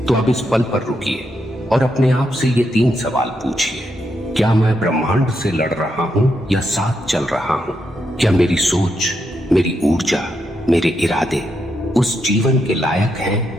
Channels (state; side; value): normal; both; correlation 0.81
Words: तो अब इस पल पर रुकिए और अपने आप से ये 3 सवाल पूछिए। क्या मैं ब्रह्मांड से लड़ रहा हूं या साथ चल रहा हूं? क्या मेरी सोच, मेरी ऊर्जा, मेरे इरादे उस जीवन के लायक